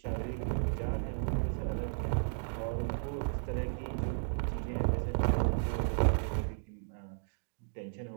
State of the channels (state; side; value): silent; left; digital silence